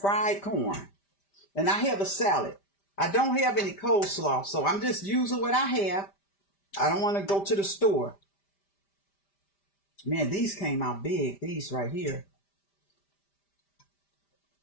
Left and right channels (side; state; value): right; late; 5.1 ms